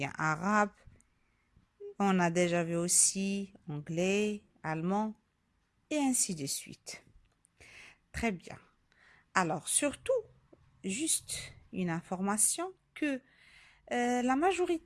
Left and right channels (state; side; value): identical; both; correlation 1.00